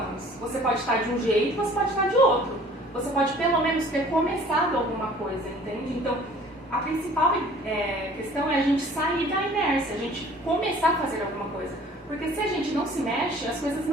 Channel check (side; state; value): both; normal; correlation 0.51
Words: Você pode estar de um jeito, você pode estar de outro. Você pode pelo menos ter começado alguma coisa, entende? Então, a principal questão é a gente sair da inércia, a gente começar a fazer alguma coisa. Porque se a gente não se mexe, as coisas